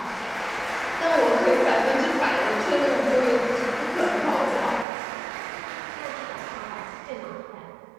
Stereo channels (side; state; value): left; drops out; at 4.9 s